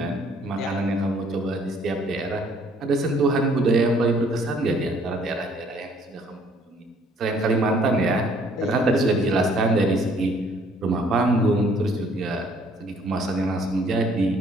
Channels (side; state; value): both; normal; correlation 0.61